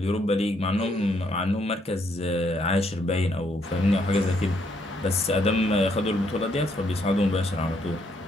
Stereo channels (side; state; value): both; normal; correlation 0.72